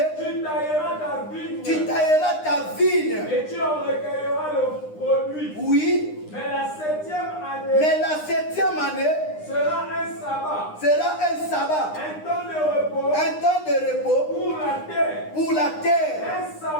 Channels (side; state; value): right; late; 9.8 ms